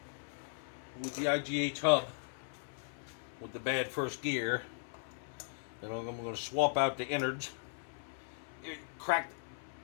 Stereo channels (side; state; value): right; silent; 53 dB below the other